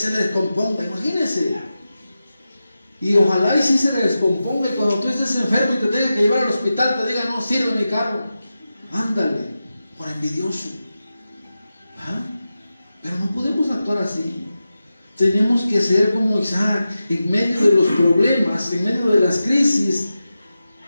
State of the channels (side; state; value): both; inverted; correlation -0.92